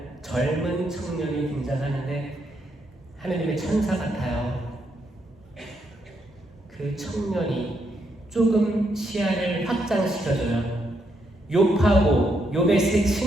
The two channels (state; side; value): normal; both; correlation 0.78